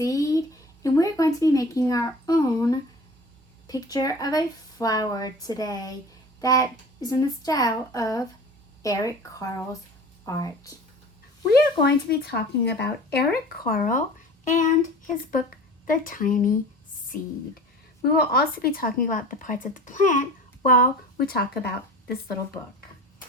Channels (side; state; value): both; normal; correlation 0.40